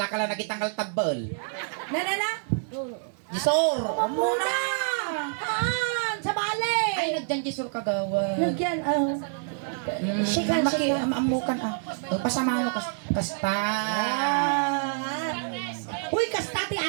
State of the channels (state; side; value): silent; left; digital silence